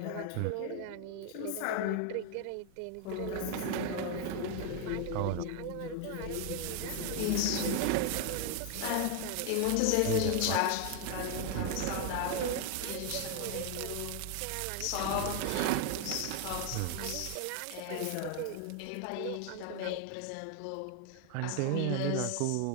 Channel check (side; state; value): both; different; correlation 0.01